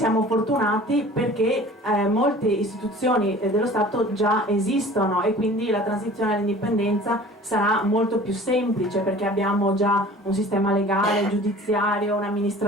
fortunati perché molte istituzioni dello Stato già esistono e quindi la transizione all'indipendenza sarà molto più semplice perché abbiamo già un sistema legale, giudiziario,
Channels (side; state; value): both; normal; correlation 0.45